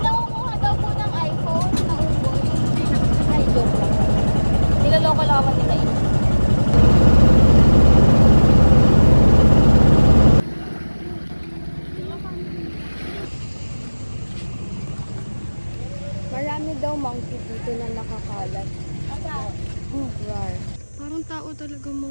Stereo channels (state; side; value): inverted; both; correlation -1.00